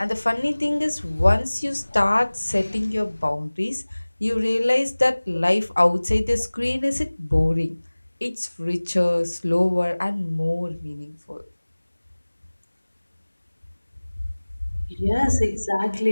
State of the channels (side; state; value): both; inverted; correlation -1.00